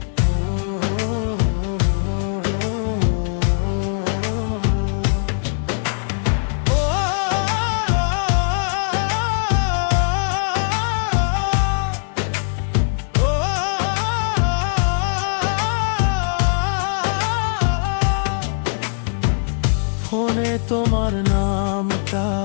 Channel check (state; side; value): silent; right; 64 dB below the other